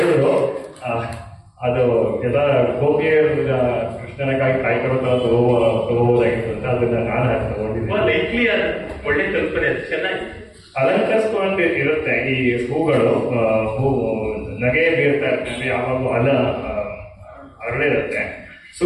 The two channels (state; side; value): identical; both; correlation 1.00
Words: ಅದು ಎಲ್ಲ ಗೋಪಿಯರ್ ಕೃಷ್ಣನಕ್ಕಾಗಿ ಕಾಯ್ಕೊಳ್ತಾ ತಗೋಬೋದಾಗಿತ್ತು ಅಂತ ಅದನ್ನ ನಾನು ತಗೊಂಡಿದ್ದೆ. ಒಳ್ಳೆ ಕಲ್ಪನೆ, ಚೆನ್ನಾಗಿ ಅಲಂಕರಿಸ್ಕೊಂಡು ಇರುತ್ತೆ ಈ ಹೂಗಳು. ನಗೆ ಬೀರ್ತಾ ಇರ್ತದೆ, ಯಾವಾಗೂ ಅರಳಿರುತ್ತೆ,